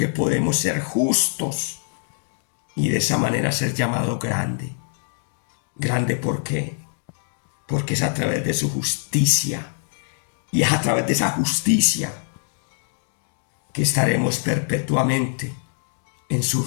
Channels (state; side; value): silent; right; digital silence